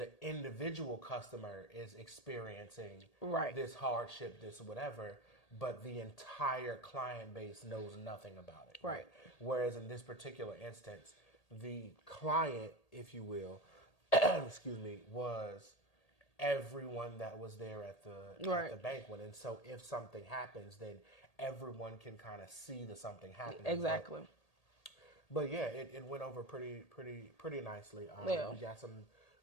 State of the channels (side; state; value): right; late; 1.8 ms